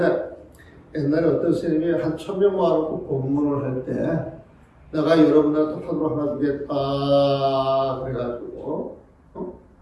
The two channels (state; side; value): identical; both; correlation 1.00